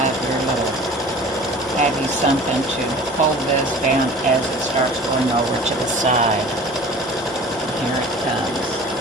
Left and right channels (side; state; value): both; normal; correlation 0.42